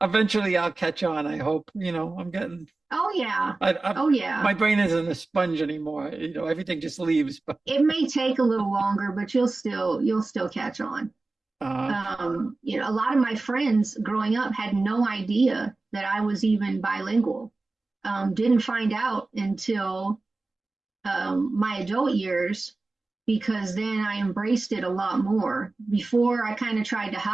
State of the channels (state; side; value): quieter; left; 3.3 dB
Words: eventually I'll catch on. I hope. I'm getting Oh yeah. I Oh yeah. my brain isn't a sponge anymore. Everything just leaves. But It may take a little longer, but you'll still catch on. uh, A lot of my friends growing up had no idea that I was even bilingual. Didn't find out until my adult years, because then I embraced it a lot more. Before, I kind of tried to